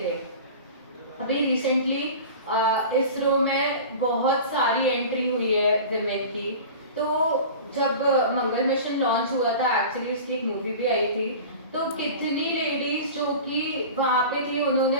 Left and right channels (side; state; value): both; inverted; correlation -0.36